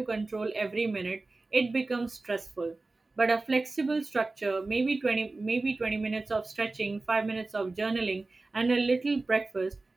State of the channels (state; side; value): quieter; left; 3.3 dB